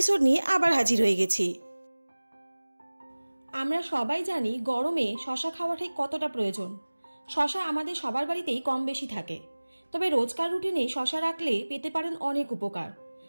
निये आबार हाजिर हये गेছি। আমরা সবাই জানি গরমে শশা খাওয়াটা কতটা প্রয়োজন। শশা আমাদের সবার বাড়িতেই কম বেশি থাকে, তবে রোজকার রুটিনে শশা রাখলে পেতে পারেন অনেক উপকার।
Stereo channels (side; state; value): both; inverted; correlation -1.00